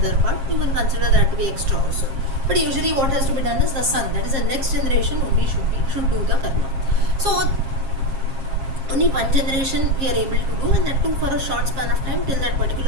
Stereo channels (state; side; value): late; left; 7.5 ms